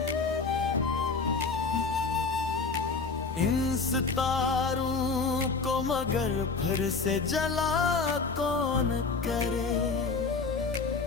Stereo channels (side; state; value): right; quieter; 4.4 dB